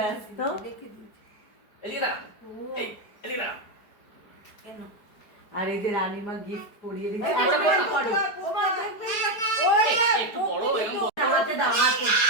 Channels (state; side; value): late; right; 4.6 ms